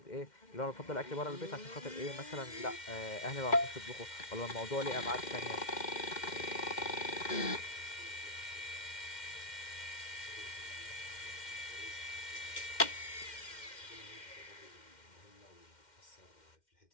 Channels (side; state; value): right; late; 2.1 ms